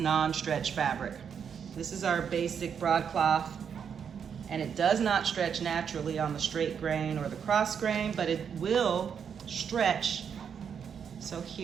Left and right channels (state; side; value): quieter; left; 7.3 dB